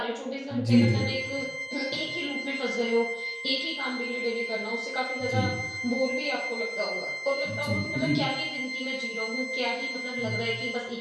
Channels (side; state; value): both; identical; correlation 1.00